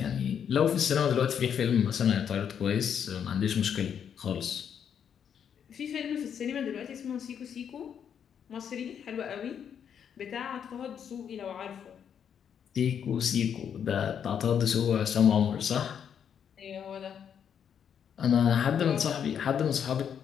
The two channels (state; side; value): quieter; right; 8.2 dB